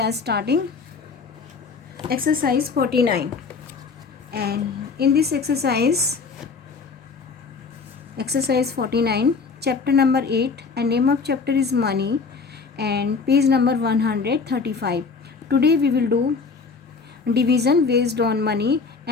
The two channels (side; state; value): right; quieter; 4.9 dB